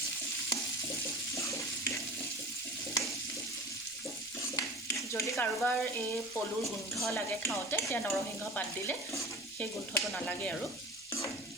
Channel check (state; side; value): noise; left; rumble, 29 dB below the sound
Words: যদি কাৰোবাৰ এই পলুৰ গোন্ধ লাগে খাওঁতে তেতিয়া নৰসিংহ পাত দিলে সেই গোন্ধটো নালাগে আৰু